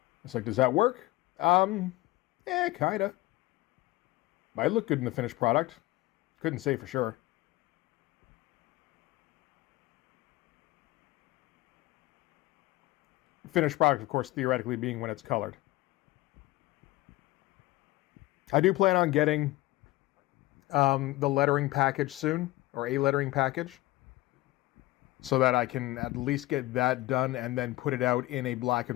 It's does that work? Yeah, kinda. Might look good in the finished product. Couldn't say for sure. Finished product, of course, theoretically being when it's colored. I do plan on getting the lettering package soon, or a lettering package, so that I can at least get that done and then put it out in a black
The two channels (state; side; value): quieter; right; 18.3 dB